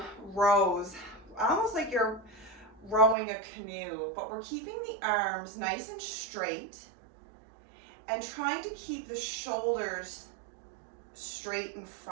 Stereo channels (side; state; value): left; drops out; at 3.2 s